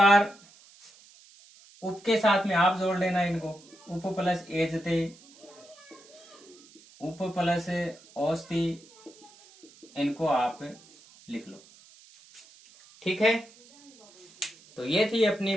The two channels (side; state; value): right; noise; hiss, 25 dB below the sound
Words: उप के साथ में आप जोड़ लेना इनको, उप प्लस एजते, उप प्लस औस्ति, इनको आप लिख लो, ठीक है। तो ये थी अपनी